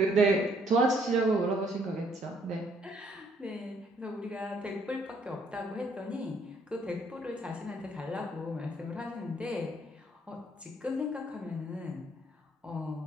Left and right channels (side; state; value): both; normal; correlation 0.66